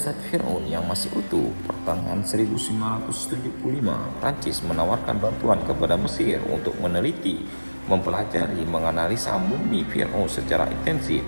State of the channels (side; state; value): both; inverted; correlation -1.00